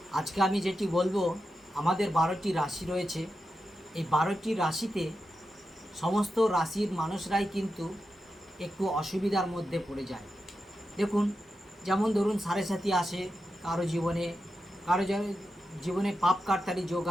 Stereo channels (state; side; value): normal; both; correlation 0.89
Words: আজকে আমি যেটি বলবো, আমাদের 12টি রাশি রয়েছে। এই 12টি রাশিতে সমস্ত রাশির মানুষরাই কিন্তু একটু অসুবিধার মধ্যে পড়ে যায়। দেখুন, যেমন ধরুন সাড়ে সাথী আসে কারো জীবনে, কারো জীবনে পাপ কাটতালি যোগ